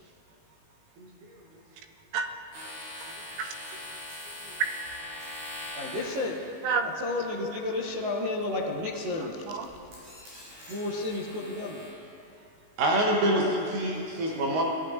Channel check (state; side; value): late; left; 19 ms